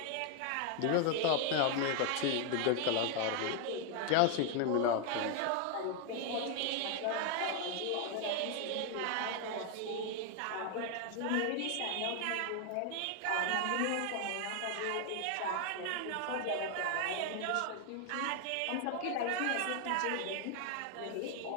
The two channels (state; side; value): different; both; correlation 0.01